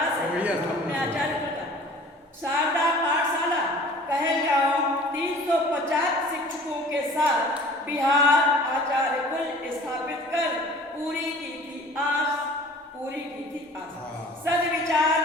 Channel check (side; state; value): both; normal; correlation 0.47